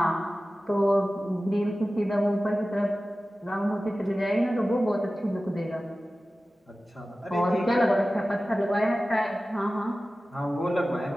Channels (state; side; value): normal; both; correlation 0.96